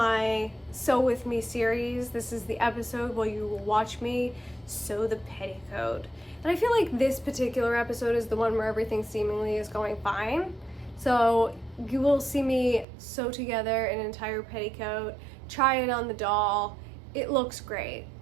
Sew With Me series. This is the episode where you will watch me sew the petticoat. And I feel like this particular episode is the one where everything seemingly is going fine. So you will see me sew together an entire petticoat, try it on the doll. It looks great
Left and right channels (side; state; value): left; drops out; at 12.9 s